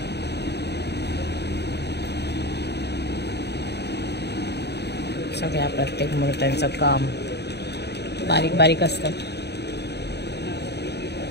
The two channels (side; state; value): right; late; 0.49 ms